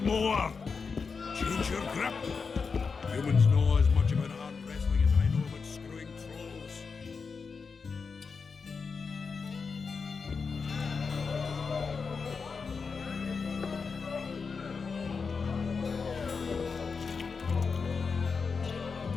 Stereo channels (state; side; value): quieter; right; 5.1 dB